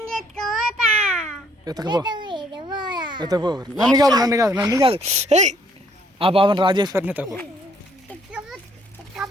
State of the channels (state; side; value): normal; both; correlation 0.65